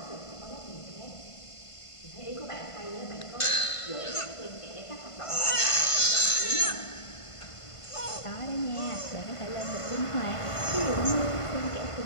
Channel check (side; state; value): right; late; 1.5 ms